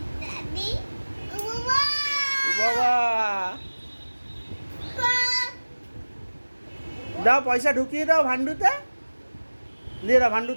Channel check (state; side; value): inverted; both; correlation -1.00